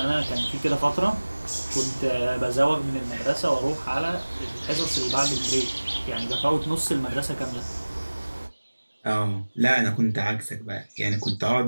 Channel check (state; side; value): inverted; both; correlation -1.00